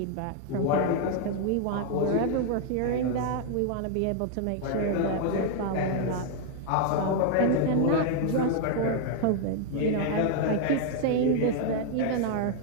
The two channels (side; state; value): both; different; correlation 0.00